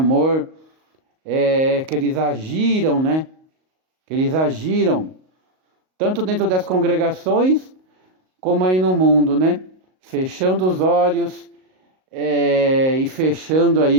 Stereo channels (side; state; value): left; late; 38 ms